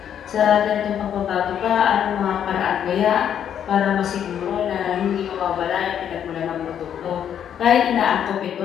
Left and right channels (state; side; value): quieter; right; 9.2 dB